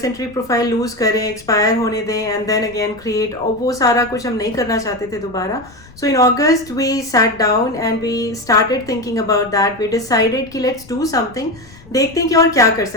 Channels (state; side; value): noise; left; rumble, 23 dB below the sound